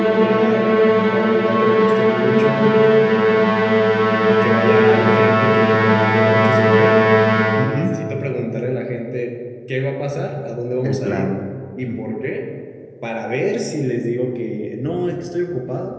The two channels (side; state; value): both; identical; correlation 1.00